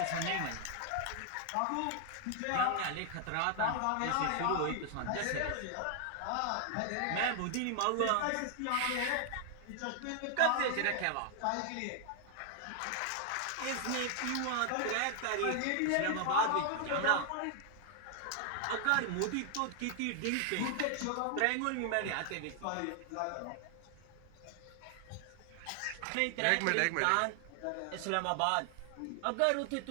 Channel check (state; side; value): different; both; correlation 0.00